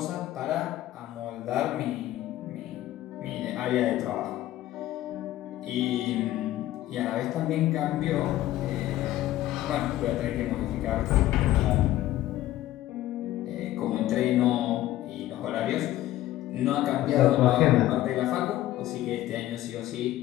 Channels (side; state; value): right; quieter; 14.6 dB